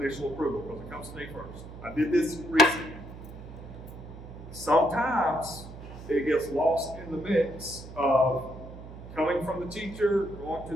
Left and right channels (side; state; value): right; noise; hum, 14 dB below the sound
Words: approval, because it comes to me first. I did this recently. Sometimes it gets lost in the mix of coming from the teacher, going to